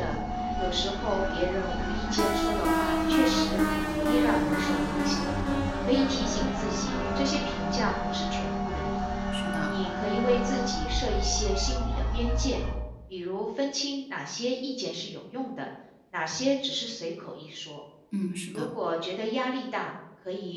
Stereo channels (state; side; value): identical; both; correlation 1.00